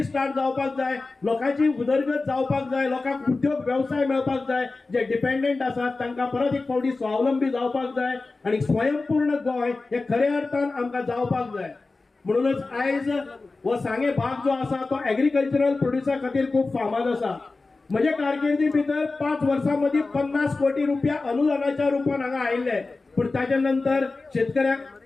जावपाक जाय, लोकांची उदरगत जावपाक जाय, लोकांक उद्योग व्यवसाय मेळपाक जाय. जे डिपेंडंट आसात तांकां परत एक फावटी स्वावलंबी जावपाक जाय आणि स्वयंपूर्ण गोंय हे खऱ्या अर्थान आमकां जावपाक जाय. म्हणूनच आयज हो सांगे भाग जो आसा तो एग्रीकल्चरल प्रोड्युसा खातीर खूप फामाद आसा. म्हजे कारकिर्दी भितर 5 वर्सां मदीं 50 कोटी रुपया अनुदानाच्या रुपान हांगा आयिल्ले. पण ताच्या नंतर शेतकऱ्याक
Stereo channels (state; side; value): quieter; right; 3.6 dB